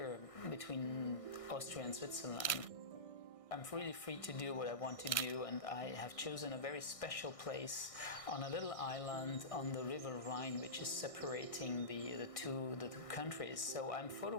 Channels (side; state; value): right; late; 1.6 ms